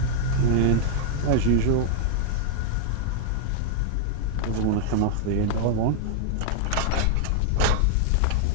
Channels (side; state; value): both; different; correlation 0.00